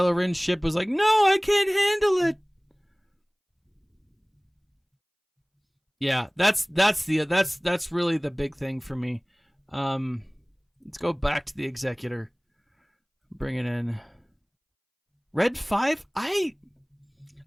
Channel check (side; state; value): both; identical; correlation 1.00